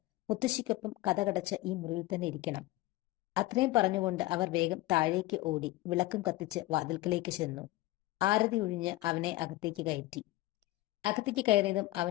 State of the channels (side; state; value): right; quieter; 18.0 dB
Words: മുത്തശ്ശിക്കൊപ്പം കതകടച്ച് ഈ മുറിയിൽ തന്നെ ഇരിക്കണം. അത്രയും പറഞ്ഞുകൊണ്ട് അവർ വേഗം താഴേക്ക് ഓടി വിളക്കും കത്തിച്ച് വാതിൽക്കലേക്ക് ചെന്നു. ആരതി ഒഴിഞ്ഞ് അവനെ അകത്തേക്ക് കയറ്റി. അകത്തേക്ക് കയറിയതും